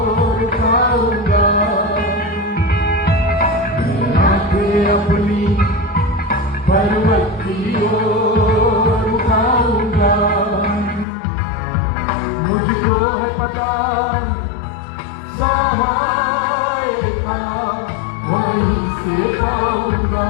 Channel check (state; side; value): drops out; right; at 11.1 s